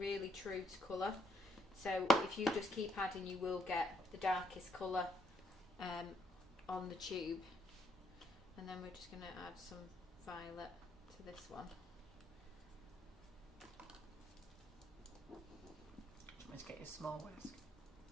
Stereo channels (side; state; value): both; normal; correlation 0.74